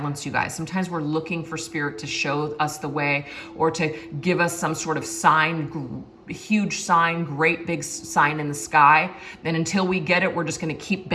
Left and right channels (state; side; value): identical; both; correlation 1.00